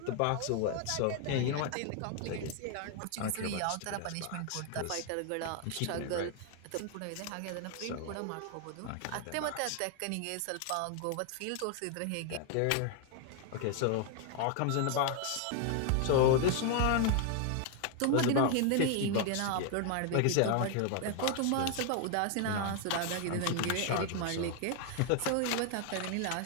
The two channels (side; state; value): both; different; correlation 0.00